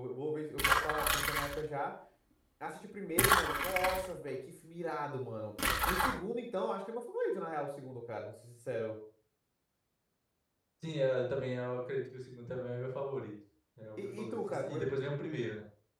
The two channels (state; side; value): identical; both; correlation 1.00